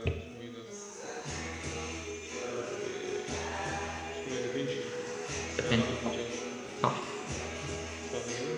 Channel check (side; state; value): both; identical; correlation 1.00